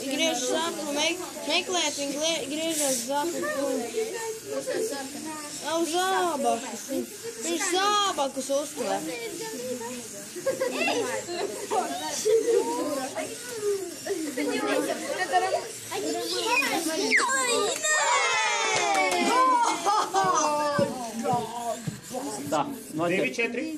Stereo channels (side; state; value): both; identical; correlation 1.00